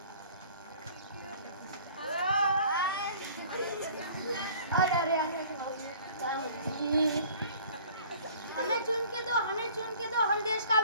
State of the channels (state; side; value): inverted; both; correlation -0.50